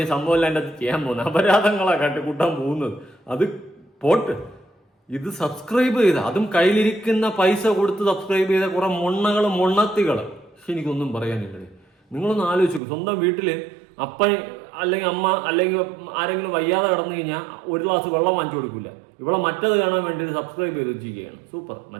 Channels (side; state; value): left; drops out; at 12.8 s